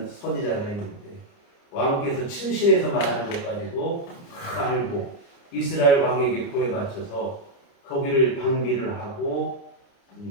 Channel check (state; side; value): late; right; 29 ms